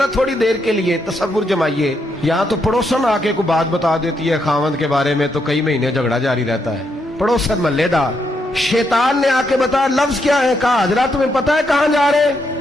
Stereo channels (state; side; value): normal; both; correlation 0.79